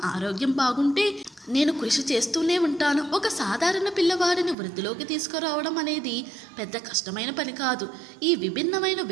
ఆరోగ్యం బాగుంటే నేను కృషి చేస్తూనే ఉంటాను. ఒక సాధారణ పిల్లవాడిని వృద్ధిలోకి తీసుకురావడం అనేది పెద్ద కష్టమైన పని కాదు. ఈ విభిన్నమైన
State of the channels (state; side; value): drops out; left; at 4.5 s